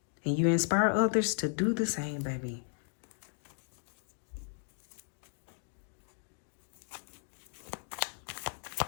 And you inspire others to do the same, baby.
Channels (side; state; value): right; silent; digital silence